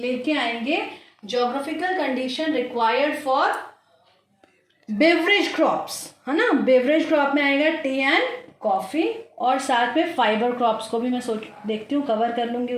आएंगे geographical condition required for beverage crops, है ना। बेवरेज क्रॉप में आएगा टी एंड कॉफ़ी और साथ में फाइबर क्रॉप्स को भी मैं देखती हूँ कवर कर लूँगी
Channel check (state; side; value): identical; both; correlation 1.00